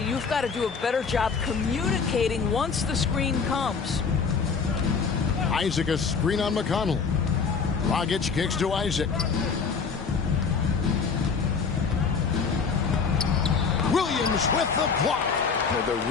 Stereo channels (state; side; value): quieter; right; 5.5 dB